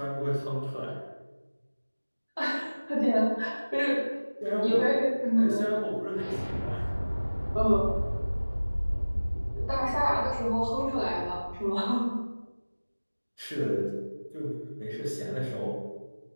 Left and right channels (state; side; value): inverted; both; correlation -1.00